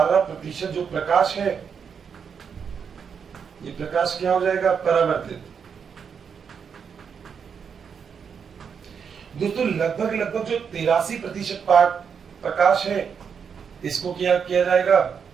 जो प्रकाश है ये प्रकाश क्या हो जाएगा? परावर्तित। दोस्तों लगभग जो 83% प्रकाश है इसको क्या किया जाएगा?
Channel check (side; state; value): left; quieter; 6.7 dB